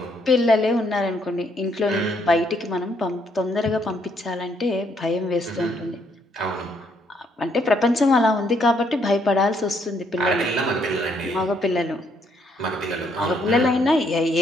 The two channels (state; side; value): normal; both; correlation 0.71